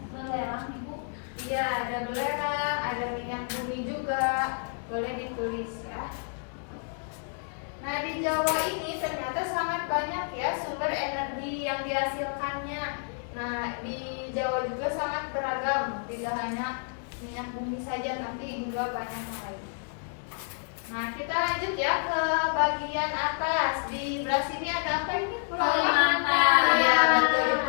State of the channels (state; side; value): silent; right; 58 dB below the other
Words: Belerang Ibu. Iya, ada belerang, ada minyak bumi juga. Boleh ditulis ya. Nah, di Jawa ini ternyata sangat banyak ya sumber energi yang dihasilkannya. Nah, di Jawa juga sangat beragam, tidak hanya minyak bumi saja, tapi juga banyak yang lain. Nah, kita lanjut ya ke bagian atas. Di belah sini ada apa ini? Kalimantan. Iya, betul. Di